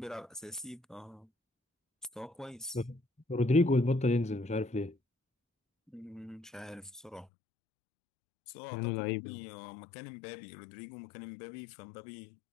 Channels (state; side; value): drops out; right; at 7.2 s